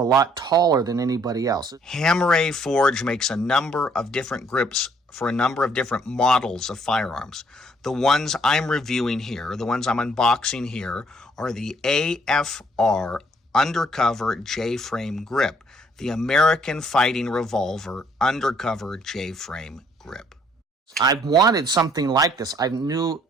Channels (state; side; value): normal; both; correlation 0.64